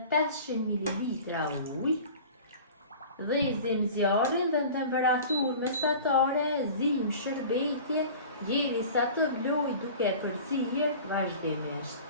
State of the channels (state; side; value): inverted; both; correlation -0.40